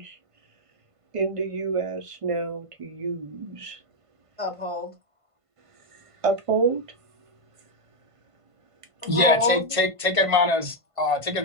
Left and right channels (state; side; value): late; left; 1.5 ms